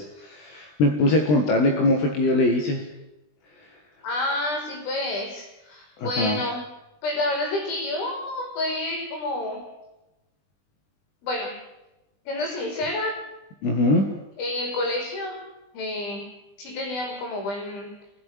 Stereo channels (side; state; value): right; late; 20 ms